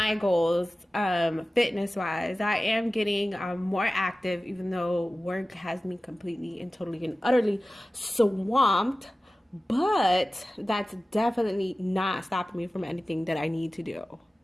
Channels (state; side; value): normal; both; correlation 0.96